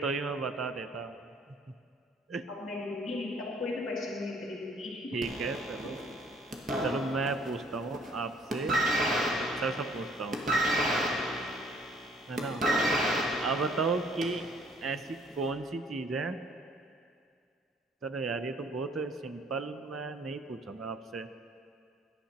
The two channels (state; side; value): normal; both; correlation 0.60